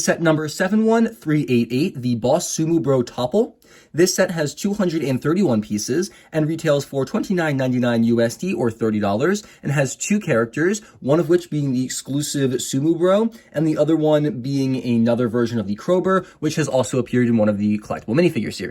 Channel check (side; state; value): both; identical; correlation 1.00